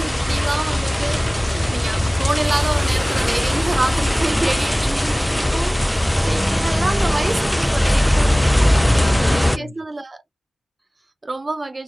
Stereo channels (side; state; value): both; normal; correlation 0.98